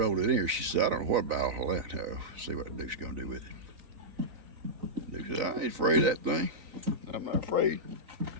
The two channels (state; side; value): late; left; 4.0 ms